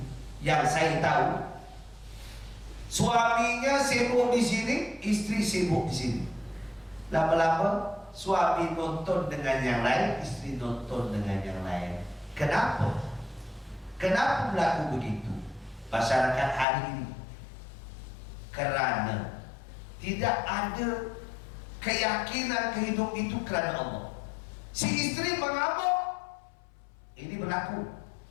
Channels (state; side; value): drops out; right; at 16.7 s